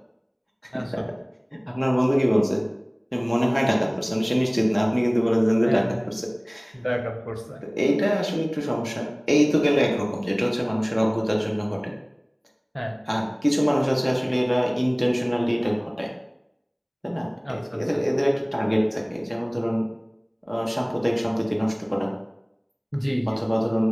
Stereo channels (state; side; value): identical; both; correlation 1.00